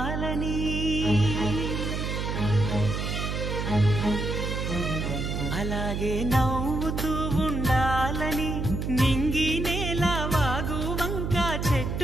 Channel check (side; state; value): right; noise; hum, 2 dB below the sound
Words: అలాగే నవ్వుతూ ఉండాలని, నింగి నేల వాగు వంక